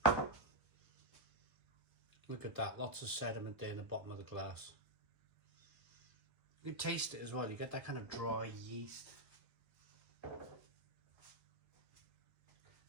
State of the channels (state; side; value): late; left; 1.0 ms